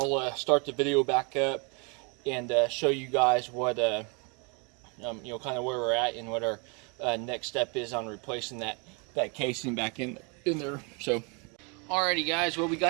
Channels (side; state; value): left; quieter; 32.9 dB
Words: start the video back up and show you guys what kind of where we're at and what our next step is on replacing that casing back in there. So alrighty guys, well, we